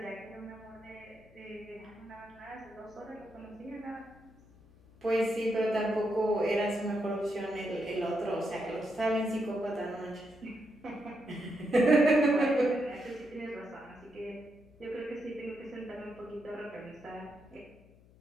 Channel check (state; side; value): noise; left; hum, 26 dB below the sound